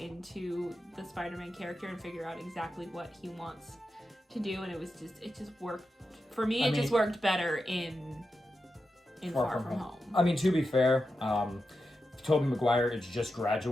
the Spider-Man character and figure out exactly what he wants to do, and it just worked for me. It just worked better in Far From Home. I mean, to be fair, Tobey Maguire is just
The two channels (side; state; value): both; normal; correlation 0.89